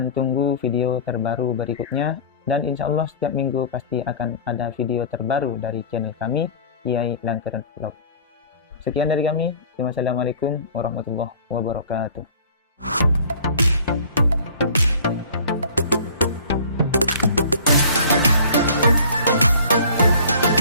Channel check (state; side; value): inverted; both; correlation -0.45